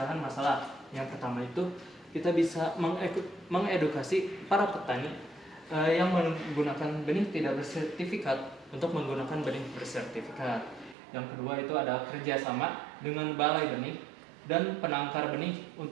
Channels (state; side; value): drops out; left; at 11.0 s